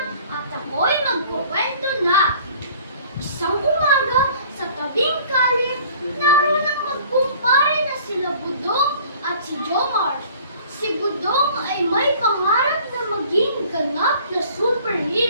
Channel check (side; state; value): both; inverted; correlation -0.51